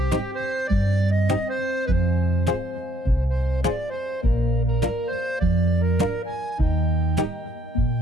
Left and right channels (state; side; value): normal; both; correlation 0.68